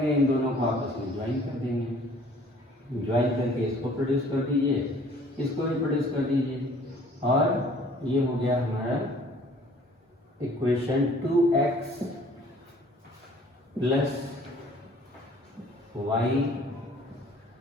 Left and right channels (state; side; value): normal; both; correlation 0.54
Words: इन दोनों को आपस में ज्वाइन कर देंगे, ज्वाइन करके इसको प्रोड्यूस कर दीजिए, इसको भी प्रोड्यूस कर दीजिए, और ये हो गया हमारा equation 2x plus y